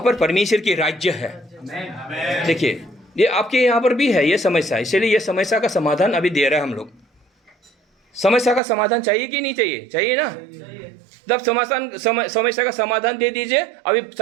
पर परमेश्वर की राज्य है। देखिए ये आपके यहाँ पर भी है ये समस्या, इसलिए ये समस्या का समाधान अभी दे रहे हैं हम लोग। समस्या का समाधान चाहिए कि नहीं चाहिए? चाहिए ना। जब समस्या का समाधान दे दीजिए, अभी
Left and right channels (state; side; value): drops out; left; at 8.6 s